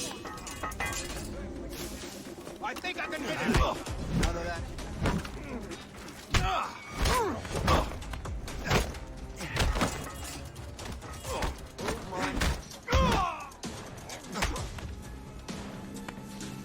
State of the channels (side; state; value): both; identical; correlation 1.00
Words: I think I can hit it. Out of that.